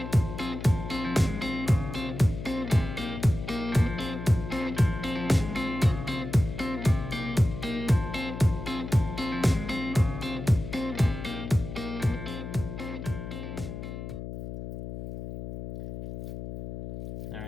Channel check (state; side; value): noise; left; hum, 8 dB below the sound